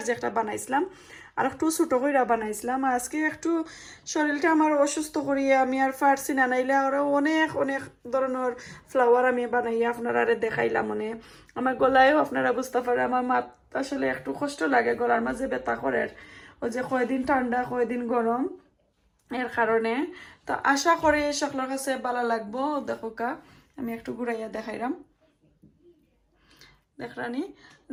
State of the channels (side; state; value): both; identical; correlation 1.00